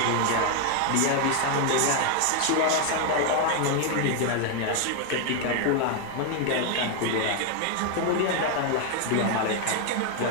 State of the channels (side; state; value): both; different; correlation 0.00